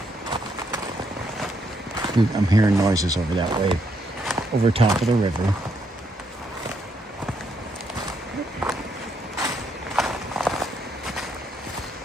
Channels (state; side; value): normal; both; correlation 0.76